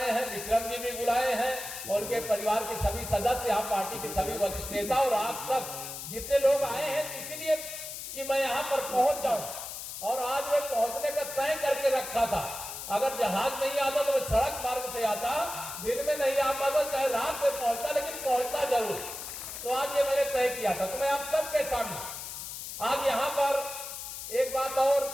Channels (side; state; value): left; noise; hiss, 8 dB below the sound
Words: हैं, विक्रम जी भी बुलाए हैं, और उनके परिवार के सभी सदस्य, आप पार्टी के सभी वरिष्ठ नेता और आप सब जितने लोग आए हैं, इसीलिए कि मैं यहाँ पर पहुंच जाऊं। और आज मैं पहुंचने का तय करके रखा था। अगर जहाज नहीं आता तो मैं सड़क मार्ग से आता, दिन में नहीं आ पाता, चाहे रात में पहुंचता, लेकिन पहुंचता जरूर। तो आज ये मैंने तय किया था। तो मैं आप सबके सामने आज यहाँ पर एक बात और,